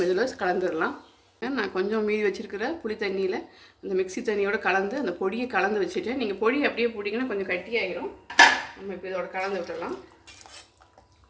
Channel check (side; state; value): both; identical; correlation 1.00